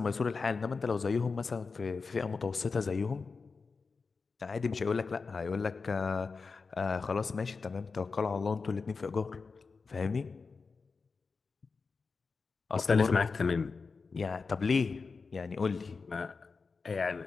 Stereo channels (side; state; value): right; quieter; 4.6 dB